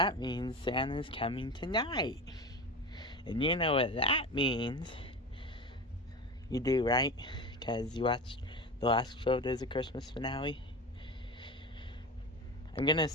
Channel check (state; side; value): normal; both; correlation 0.27